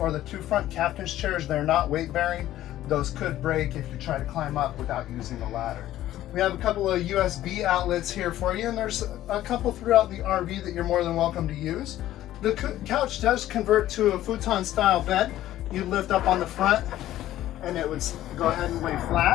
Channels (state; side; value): quieter; right; 13.7 dB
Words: the two front captain's chairs, they're not weight bearing. Those could break if you try to climb up without using the ladder. We have a couple of USB outlets here for you, and there's a couple throughout the RV that you're more than welcome to use. The couch does convert to a futon style bed. You lift up on the front and it would go ahead and lay